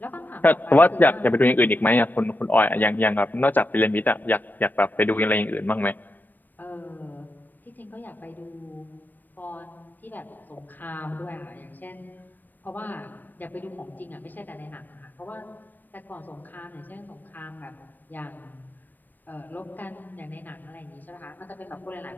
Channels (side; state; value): right; late; 0.090 ms